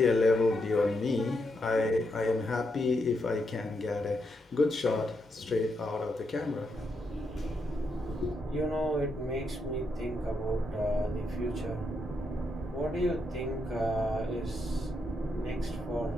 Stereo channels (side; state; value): both; normal; correlation 0.81